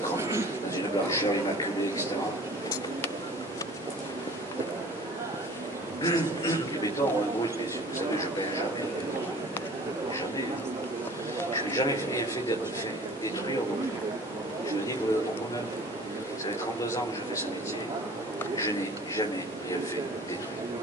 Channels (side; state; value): both; normal; correlation 0.46